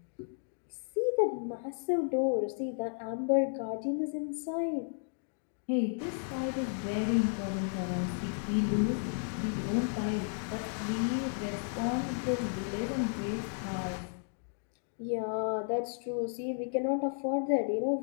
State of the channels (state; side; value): silent; right; 55 dB below the other